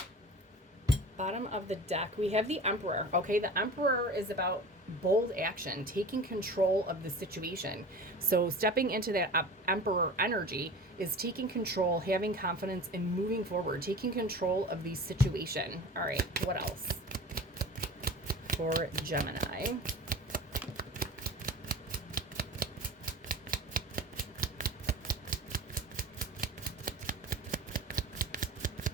Bottom of the deck, we have the Emperor. Okay, the Emperor is about bold action, taking control of the situation. So stepping into that Emperor energy is taking control, having confidence, and moving forward, taking control of the situation. All right, what else for Gemini?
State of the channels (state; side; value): normal; both; correlation 0.37